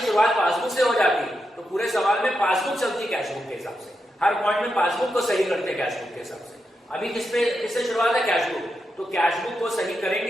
शुरुआत पासबुक से हो जाती तो पूरे सवाल में पासबुक चलती कैश बुक के हिसाब से, हर पॉइंट में पासबुक को सही करते कैश बुक के हिसाब से। अभी किससे शुरुआत है, कैश बुक, तो कैश बुक को सही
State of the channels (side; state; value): both; normal; correlation 0.86